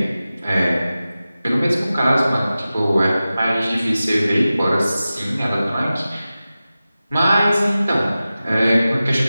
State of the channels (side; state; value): both; inverted; correlation -0.95